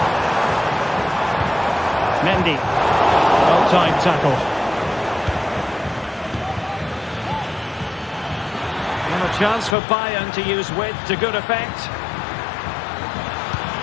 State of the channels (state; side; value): drops out; right; at 9.8 s